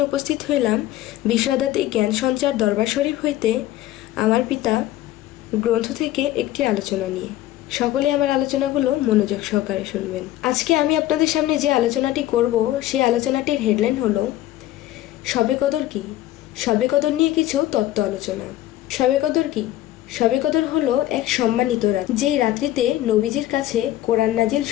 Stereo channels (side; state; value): right; quieter; 14.2 dB